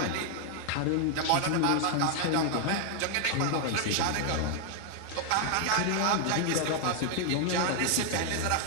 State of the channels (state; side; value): different; both; correlation 0.00